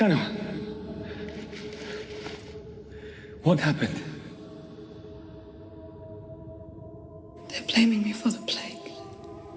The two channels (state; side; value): identical; both; correlation 1.00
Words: What happened? They're blaming me for the plague.